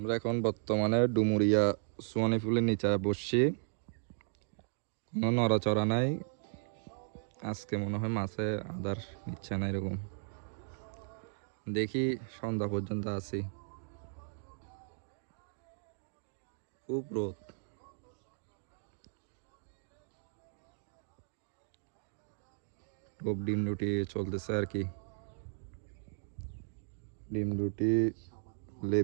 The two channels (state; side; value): silent; left; digital silence